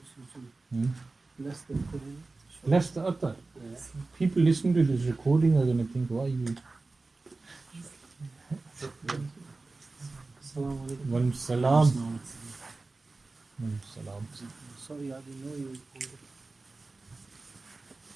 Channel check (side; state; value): left; quieter; 3.5 dB